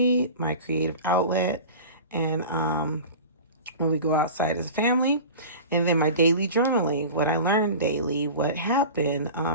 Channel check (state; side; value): inverted; both; correlation -0.35